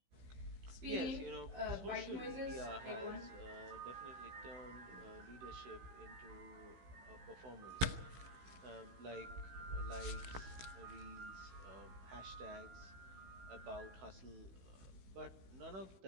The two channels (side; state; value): left; late; 16 ms